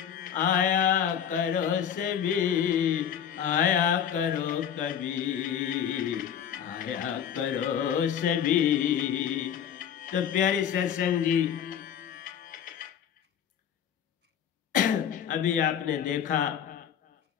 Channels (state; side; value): quieter; right; 8.9 dB